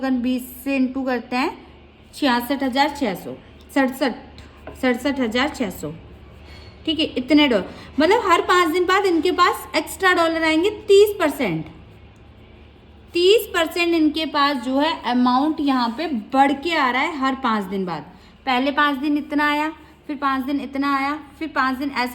20 से इंटू करते हैं 66,600, 67,600, ठीक है, इतने डॉलर, मतलब हर 5 दिन बाद इनके पास एक्स्ट्रा डॉलर आएंगे 30%, 30% इनके पास जो है अमाउंट यहाँ पे बढ़ के आ रहा है हर 5 दिन बाद। पहले 5 दिन इतना आया, फिर 5 दिन इतना आया, फिर 5 दिन,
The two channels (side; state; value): both; identical; correlation 1.00